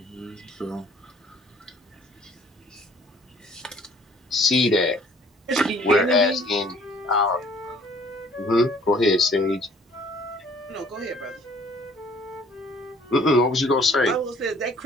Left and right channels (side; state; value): both; normal; correlation 0.56